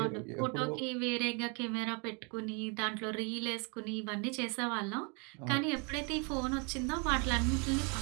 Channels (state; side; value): quieter; left; 34.3 dB